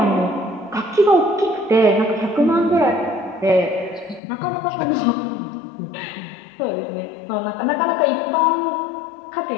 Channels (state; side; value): drops out; right; at 4.2 s